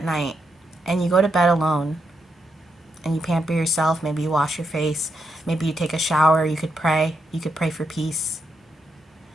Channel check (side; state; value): both; normal; correlation 0.82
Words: night and you go to bed alone and you pamper yourself. Maybe you wash your face. Maybe you take a shower. You could pray. You could pray for peace.